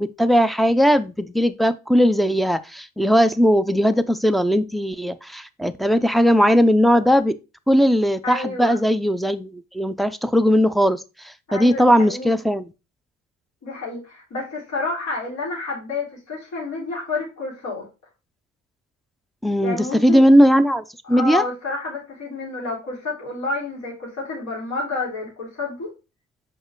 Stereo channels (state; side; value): normal; both; correlation 0.88